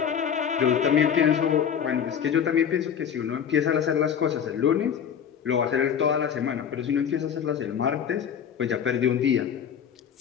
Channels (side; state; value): right; quieter; 8.1 dB